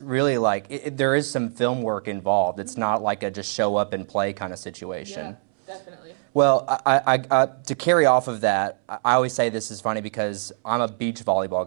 really like there is some film work involved. It's not like a just show up and play kind of situation. Yeah, definitely. Well, I to carry off of that, I always say this is funny because I'm a beach volleyball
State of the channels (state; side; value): silent; left; 63 dB below the other